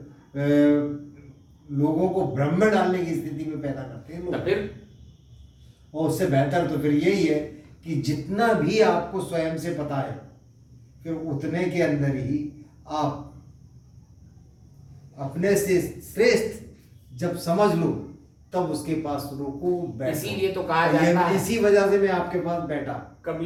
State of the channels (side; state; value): both; identical; correlation 1.00